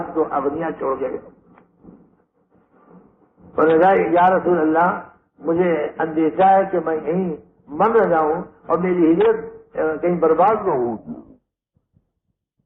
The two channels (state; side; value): identical; both; correlation 1.00